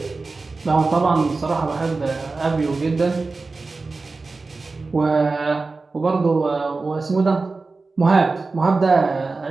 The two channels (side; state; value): left; quieter; 3.8 dB